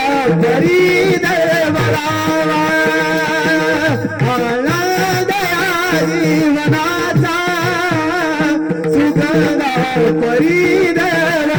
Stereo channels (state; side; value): identical; both; correlation 1.00